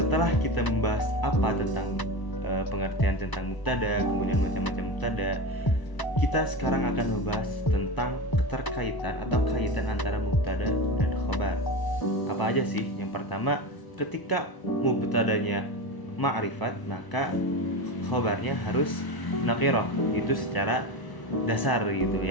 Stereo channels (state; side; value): late; right; 1.0 ms